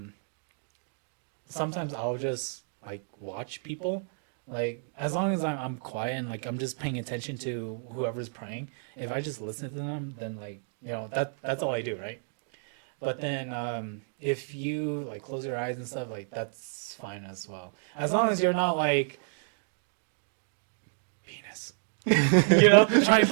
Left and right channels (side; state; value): left; silent; digital silence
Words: sometimes I'll just like watch people, like as long as I'm quiet and like I'm just paying attention to whoever's praying. If I just listen to them, then like that's all I do, right? But then if you like close your eyes and stuff, like that's fine as well, as long as you're not like penis. Trying to